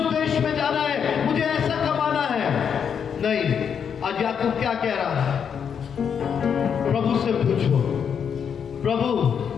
देश में जाना है, मुझे ऐसा कमाना है। नहीं, आज याकूब क्या कह रहा है? प्रभु से पूछो, प्रभु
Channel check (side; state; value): right; quieter; 7.4 dB